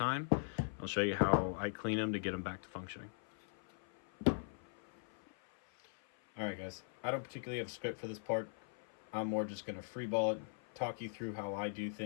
I'll show you how I clean them to get them back to functioning. Alright guys, I don't particularly have a script for this part. I'm more just going to freeball it, talk you through how I do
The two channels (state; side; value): silent; right; 51 dB below the other